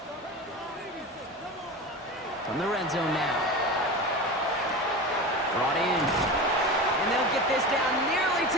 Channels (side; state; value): both; normal; correlation 0.28